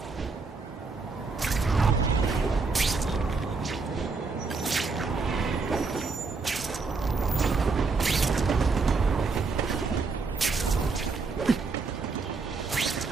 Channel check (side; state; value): left; quieter; 4.3 dB